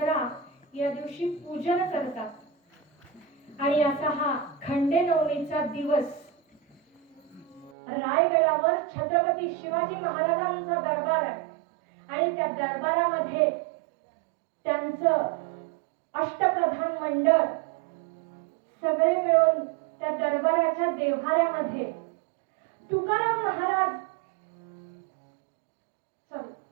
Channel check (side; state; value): left; drops out; at 7.7 s